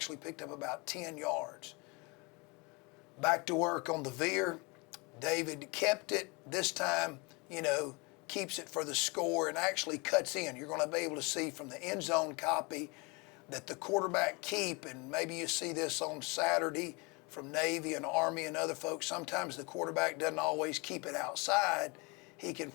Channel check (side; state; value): right; quieter; 28.4 dB